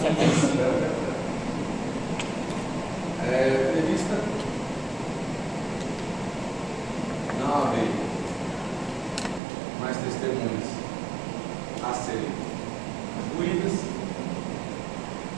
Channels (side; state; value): left; drops out; at 9.4 s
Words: Prevista não haver mais testemunhas a serem concluídas,